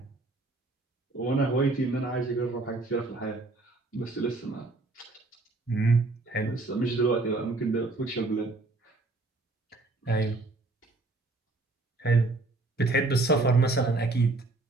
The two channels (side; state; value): left; quieter; 3.2 dB